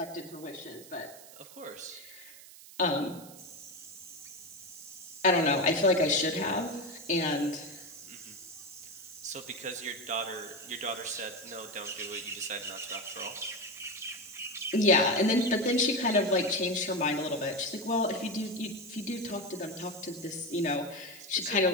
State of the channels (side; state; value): right; noise; hiss, 18 dB below the sound